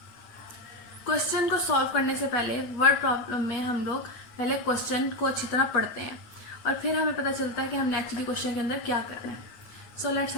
क्वेश्चन को सॉल्व करने से पहले वर्ड प्रॉब्लम में हम लोग पहले क्वेश्चन को अच्छी तरह पढ़ते हैं और फिर हमें पता चलता है कि हमने एक्चुअली क्वेश्चन के अंदर क्या करना है. So let's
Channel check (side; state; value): right; late; 8.9 ms